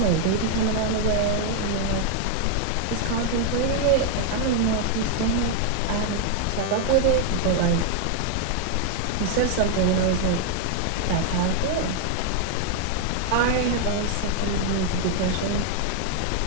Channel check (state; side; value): different; both; correlation 0.00